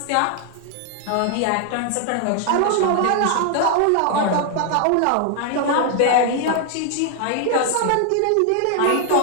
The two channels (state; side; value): different; both; correlation 0.00